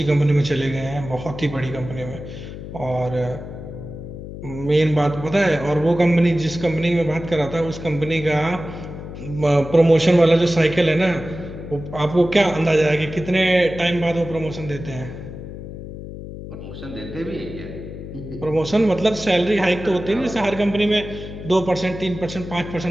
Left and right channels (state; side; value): noise; left; hum, 11 dB below the sound